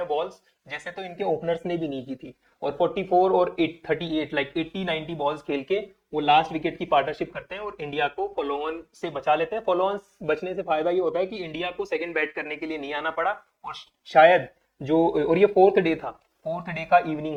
बॉल्स जैसे तो इनके ओपनर्स ने भी नहीं की थी। और 44 और 38 लाइक 80-90 बॉल्स खेल के वो लास्ट विकेट की पार्टनरशिप करते हैं और इंडिया को फॉलो ऑन से बचा लेते हैं। फॉलो ऑन बचने से फायदा ये होता है कि इंडिया को सेकंड बैट करने के लिए नहीं आना पड़ा। और शायद जो, और ये फोर्थ डे था, फोर्थ डे का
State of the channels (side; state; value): both; identical; correlation 1.00